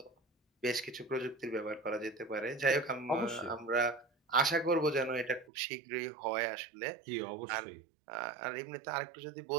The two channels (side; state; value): left; drops out; at 5.5 s